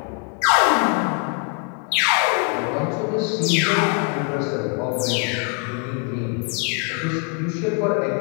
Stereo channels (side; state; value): right; quieter; 39.3 dB